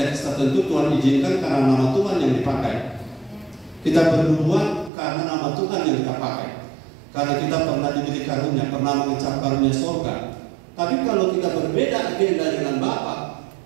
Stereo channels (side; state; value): left; drops out; at 4.9 s